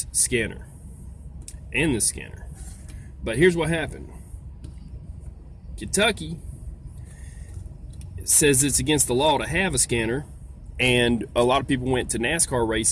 scanner and this scanner. But here's what happened. Kentucky says it's against the law to have a scanner. And a lot of people went to NASCAR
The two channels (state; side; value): identical; both; correlation 1.00